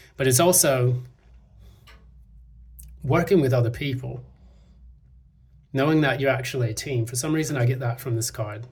But it's also working with other people, knowing that you're actually a team. For some reason, I get that from this card,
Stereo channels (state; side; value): identical; both; correlation 1.00